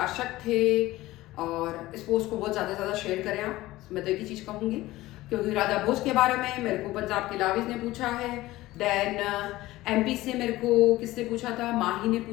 थे और इस पोस्ट को बहुत ज्यादा शेयर करें आप। मैं तो एक ही चीज कहूंगी, क्योंकि राजा भोज के बारे में मेरे को पंजाब के लाविज ने पूछा है, देन एमपी से मेरे को किसने पूछा था? माही ने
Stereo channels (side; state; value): right; quieter; 17.6 dB